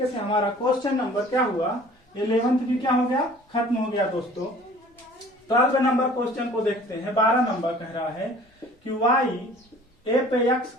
से हमारा क्वेश्चन नंबर क्या हुआ, 11th भी क्या हो गया, खत्म हो गया दोस्तों। 12 नंबर क्वेश्चन को देखते हैं। 12 नंबर कह रहा है कि y a पे x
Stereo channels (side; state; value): both; normal; correlation 0.49